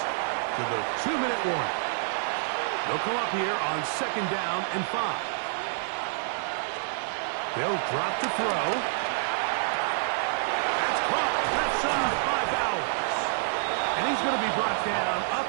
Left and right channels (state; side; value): silent; left; digital silence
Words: to the 2-minute warning. They'll come up here on 2nd down and 5. They'll drop to throw. That's caught left side by Bowers. And he's going to be brought down